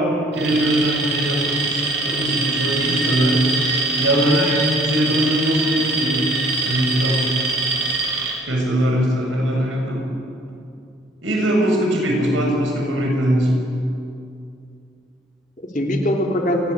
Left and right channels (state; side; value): normal; both; correlation 0.59